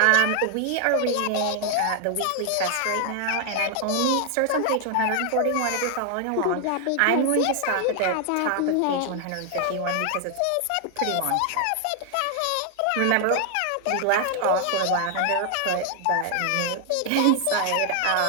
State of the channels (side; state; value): both; different; correlation 0.00